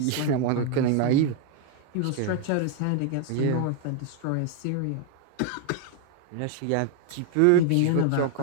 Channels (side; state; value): both; different; correlation 0.01